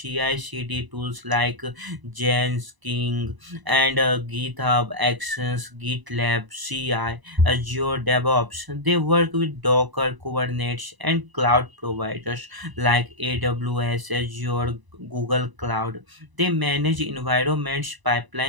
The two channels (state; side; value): late; left; 1.0 ms